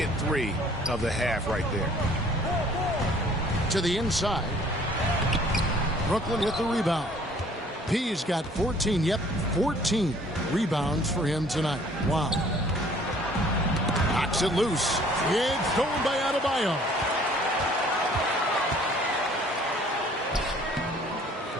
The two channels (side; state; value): both; normal; correlation 0.55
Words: three of the half right there. To the inside. Brooklyn with the rebound. P's got 14, 14 rebounds for him tonight. Wow. Knocks it loose. It's stolen by Adebayo.